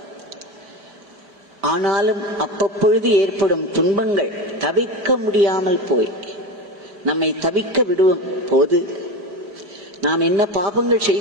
ஆனாலும் அப்பப்பொழுது ஏற்படும் துன்பங்கள் தவிர்க்க முடியாமல் போய் நம்மை தவிக்க விடும் போது நாம் என்ன பாபங்கள்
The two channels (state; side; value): late; left; 4.8 ms